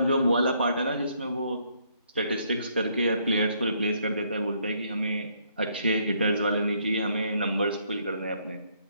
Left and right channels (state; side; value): inverted; both; correlation -0.69